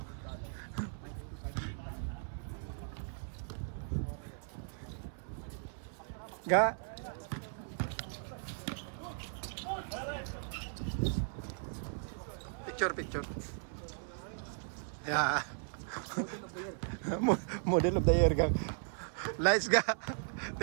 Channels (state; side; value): silent; left; 53 dB below the other